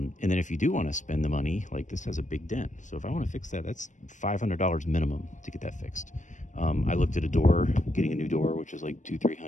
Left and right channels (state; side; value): late; right; 0.36 ms